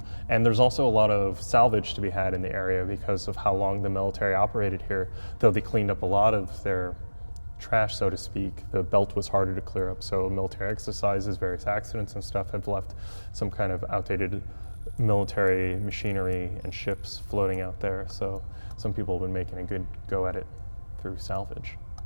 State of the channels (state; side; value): inverted; both; correlation -1.00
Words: And there's also a lot of salvage to be had in the area because of how long the military operated here. Though they cleaned up a lot of their trash, so to speak, the belt was harder to clear up. So military exercises, various accidents and stuff have left some kind of outdated military machinery and ships floating out there. So some people have been making a good go at it through salvage.